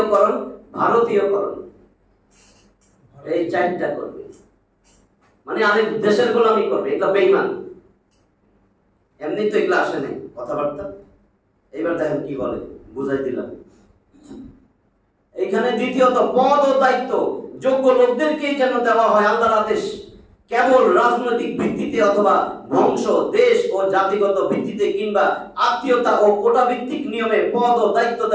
ভারতীয়করণ, এই 4টা করবে, মানে আরেক দেশের গোলামি করবে। এটা বেঈমান, এমনি তো এগুলো আসে নাই কথাবার্তা। এইবার দেখেন কি বলে, বুঝাই দিলাম। এখানে দ্বিতীয়ত পদ ও দায়িত্ব যোগ্য লোকদেরকেই যেন দেওয়া হয় আল্লাহর আদেশ। কেবল রাজনৈতিক ভিত্তিতে অথবা বংশ, দেশ ও জাতিগত ভিত্তিতে কিংবা আত্মীয়তা ও কোটা ভিত্তিক নিয়মে পদ ও দায়িত্ব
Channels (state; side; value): identical; both; correlation 1.00